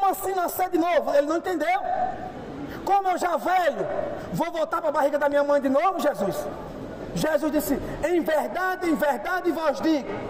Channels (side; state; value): both; identical; correlation 1.00